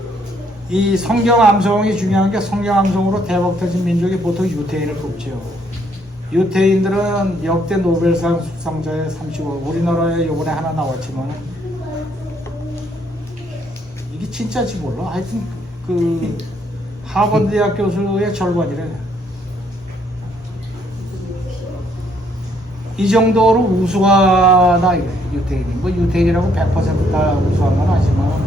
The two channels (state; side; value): normal; both; correlation 0.69